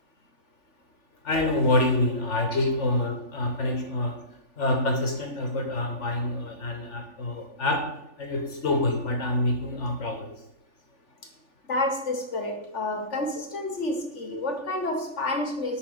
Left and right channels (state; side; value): late; right; 3.4 ms